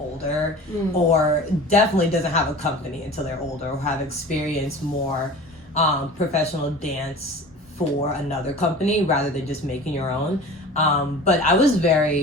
or definitely doesn't have a company until they're older or have experienced more professional dance for another company rather than just making your own. But I was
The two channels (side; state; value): both; normal; correlation 0.39